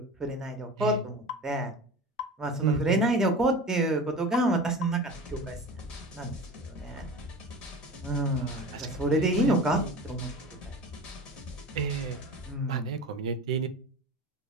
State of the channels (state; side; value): normal; both; correlation 0.34